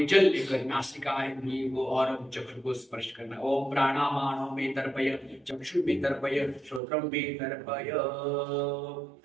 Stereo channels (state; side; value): drops out; left; at 6.8 s